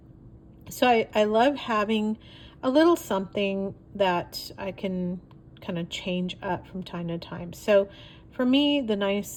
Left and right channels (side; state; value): both; identical; correlation 1.00